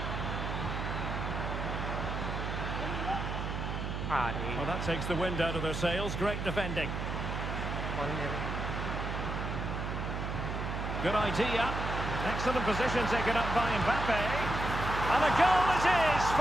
Well, that takes the wind out of their sails. Great defending. Good idea. Excellent position taken up by Mbappe. And a goal it is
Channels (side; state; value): right; noise; hum, 3 dB below the sound